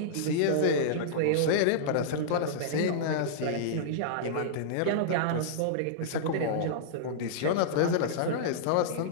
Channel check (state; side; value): different; both; correlation -0.02